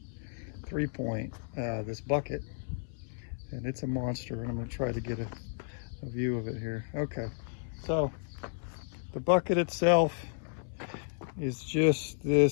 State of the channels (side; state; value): right; silent; 56 dB below the other